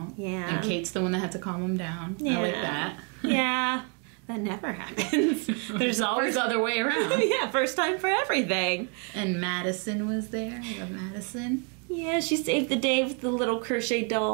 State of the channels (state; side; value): quieter; left; 36.2 dB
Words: Yeah. And Kate's the one that had to calm him down. Yeah. I like that. Yeah. That never happens. There's always the other way around. Yeah, first time for everything. And Madison was there. I love Madison. Yeah, she saved the day with the little crochet